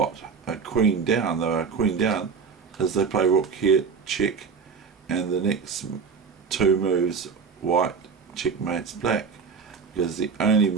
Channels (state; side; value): quieter; left; 5.8 dB